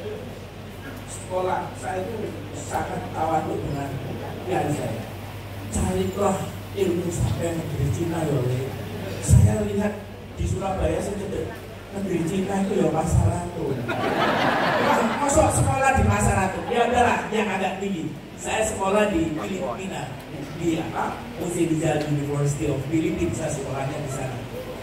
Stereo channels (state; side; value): identical; both; correlation 1.00